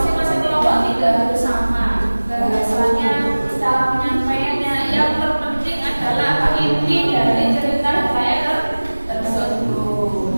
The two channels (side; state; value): both; inverted; correlation -1.00